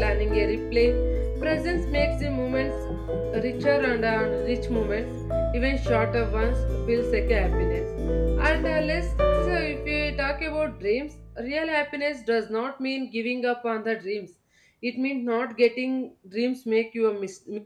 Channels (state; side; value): identical; both; correlation 1.00